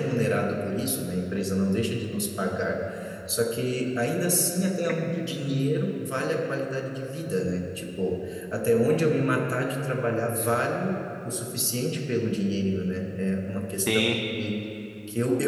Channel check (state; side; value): identical; both; correlation 1.00